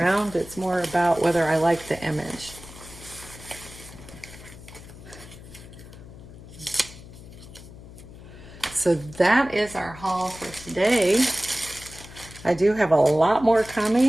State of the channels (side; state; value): left; noise; hum, 17 dB below the sound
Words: It's more about whether I like the image. So that is our haul for today. I do have a lot more